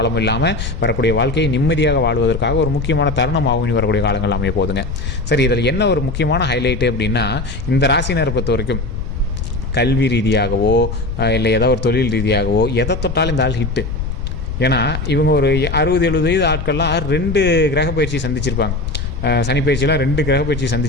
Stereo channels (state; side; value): noise; left; rumble, 5 dB below the sound